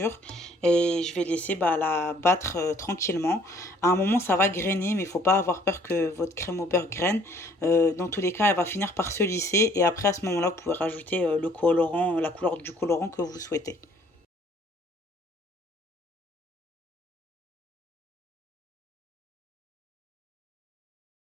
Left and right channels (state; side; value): normal; both; correlation 0.60